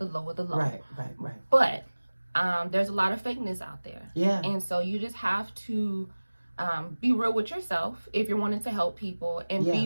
low of the low. Right. But there's a lot of fakeness out there. Yeah. And so you just have to be real with yourself if you're wanting to help people, and be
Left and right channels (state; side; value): inverted; both; correlation -1.00